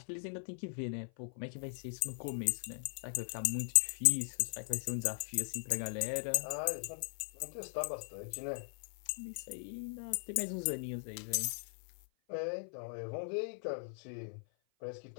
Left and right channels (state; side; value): silent; right; 52 dB below the other